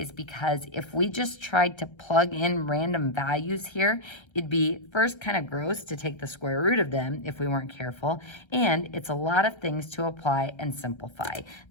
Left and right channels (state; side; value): late; right; 1.3 ms